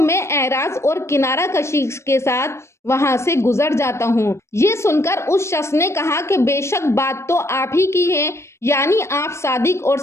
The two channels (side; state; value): right; late; 0.13 ms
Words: اعراض اور کنارہ کشی کے ساتھ وہاں سے گزر جاتا ہوں۔ یہ سن کر اس شخص نے کہا کہ بے شک بات تو آپ ہی کی ہے، یعنی آپ صادق اور